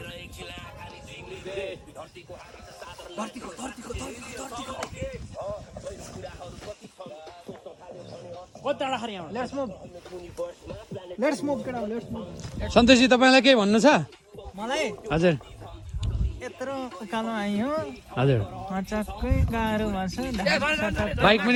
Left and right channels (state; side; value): identical; both; correlation 1.00